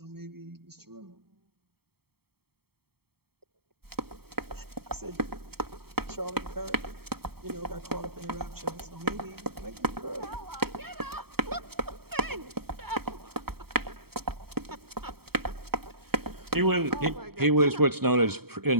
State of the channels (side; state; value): left; late; 0.95 ms